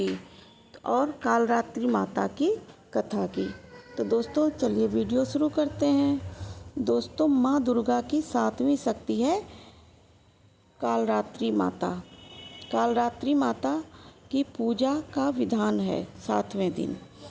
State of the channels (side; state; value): both; identical; correlation 1.00